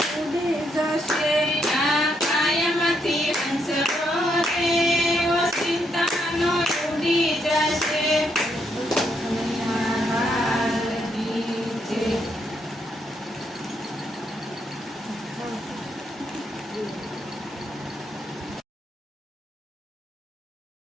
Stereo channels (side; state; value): both; normal; correlation 0.77